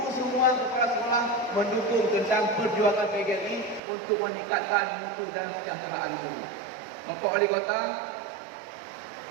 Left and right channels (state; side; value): drops out; left; at 3.8 s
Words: semua kepala sekolah mendukung tentang perjuangan PGRI untuk meningkatkan mutu dan kesejahteraan guru. Bapak Wali Kota,